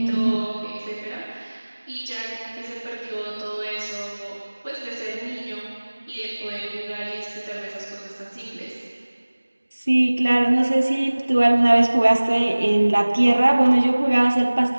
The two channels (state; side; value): inverted; both; correlation -1.00